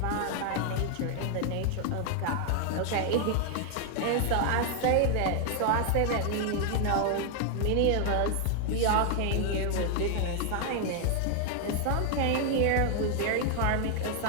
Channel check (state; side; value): different; both; correlation 0.00